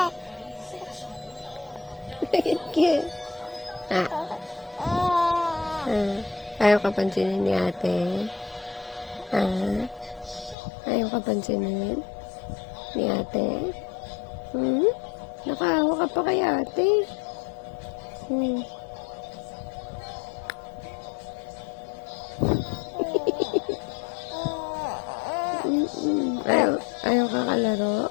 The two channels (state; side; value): drops out; right; at 10.6 s